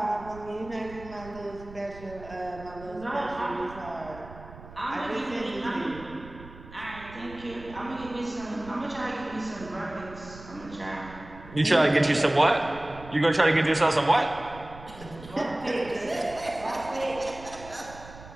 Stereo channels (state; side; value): noise; right; rumble, 17 dB below the sound